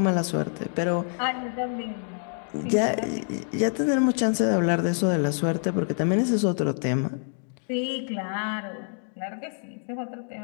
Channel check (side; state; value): right; silent; 55 dB below the other